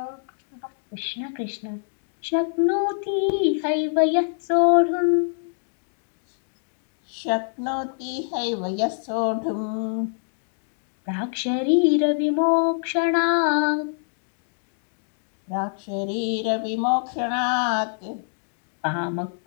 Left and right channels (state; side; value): silent; right; digital silence